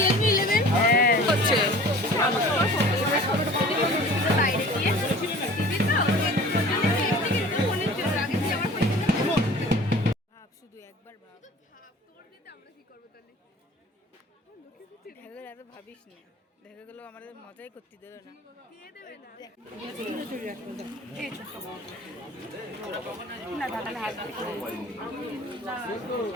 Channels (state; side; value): normal; both; correlation 0.45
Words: শুধু একবার ভাব, দেখা গেলে এত ভাবিস না, দেখা গেলো আমাদের মজাই করতে দেবে না।